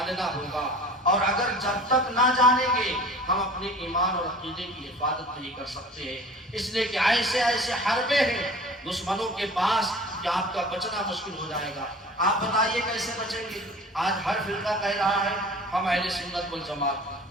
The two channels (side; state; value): both; normal; correlation 0.42